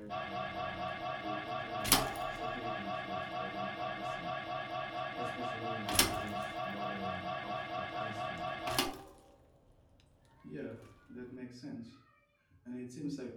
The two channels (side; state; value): both; identical; correlation 1.00